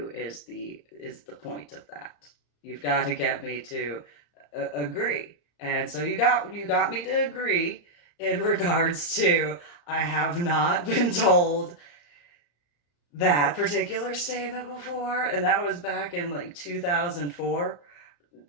is the point of that. You've got to get me to agree. And so you got me to agree in regards to I have not been told that particular statement before, and that was back in like 2004.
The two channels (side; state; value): right; late; 34 ms